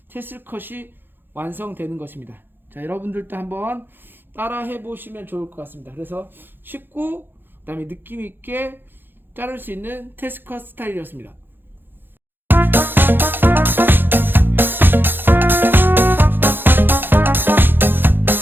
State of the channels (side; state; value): left; late; 0.098 ms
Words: 테슬 컷이 완성되는 것입니다. 자, 여러분들도 한번 따라 해보시면 좋을 것 같습니다. 그래서 쉽고 그 다음에 느낌 있게 자를 수 있는 테슬 컷 스타일이었습니다.